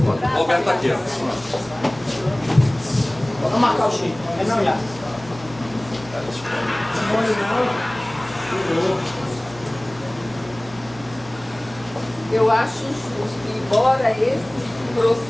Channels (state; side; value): noise; right; hum, 19 dB below the sound